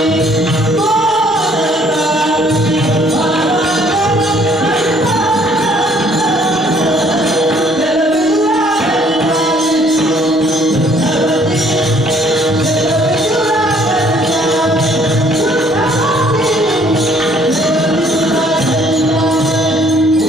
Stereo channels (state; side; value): normal; both; correlation 0.61